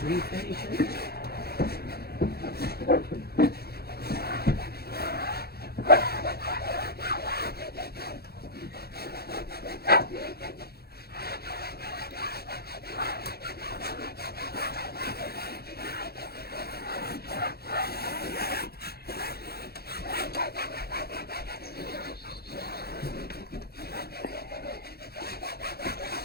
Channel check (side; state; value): right; late; 0.46 ms